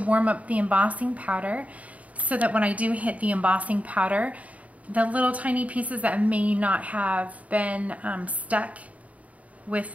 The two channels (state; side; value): late; left; 0.069 ms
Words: up the embossing powder, so that when I do hit the embossing powder, the little tiny pieces that may not have been stuck with